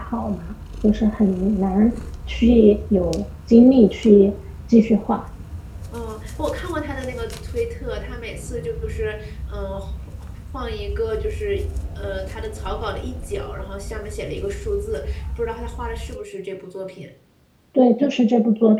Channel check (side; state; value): both; identical; correlation 1.00